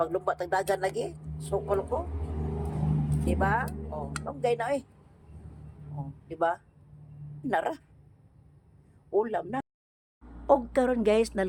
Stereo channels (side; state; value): both; identical; correlation 1.00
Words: tag dagan lagi, sukol ko. Diba? Lunggay na diba? Nara. Ulam na. Og karon guys,